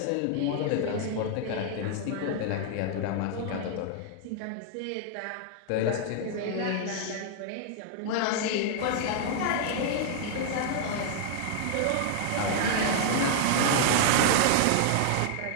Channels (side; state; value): both; different; correlation -0.01